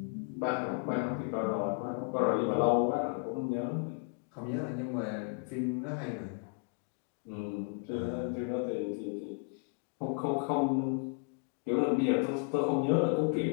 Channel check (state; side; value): quieter; right; 37.7 dB